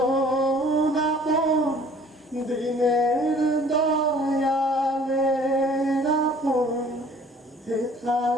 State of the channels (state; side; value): normal; both; correlation 0.53